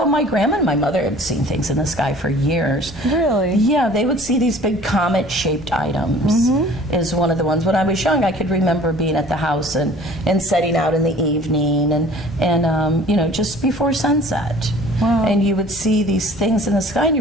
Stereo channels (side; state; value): both; normal; correlation 0.49